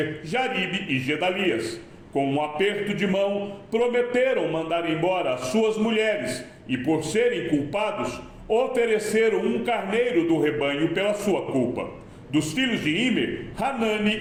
Jaribe e Gedalias. Com um aperto de mão, prometeram mandar embora as suas mulheres, e por serem culpados, ofereceram um carneiro do rebanho pela sua culpa. Dos filhos de Imer,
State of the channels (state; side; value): identical; both; correlation 1.00